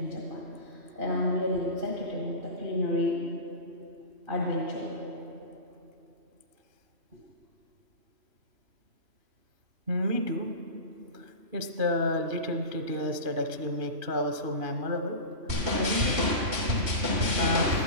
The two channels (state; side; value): late; left; 3.0 ms